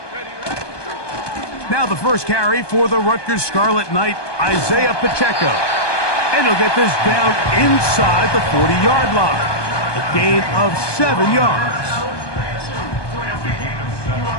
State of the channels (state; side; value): late; right; 1.2 ms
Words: Now the first carry for the Rutgers Scarlet Knight, Isaiah Pacheco. And he'll get this down inside the 40-yard line. A gain of 7 yards.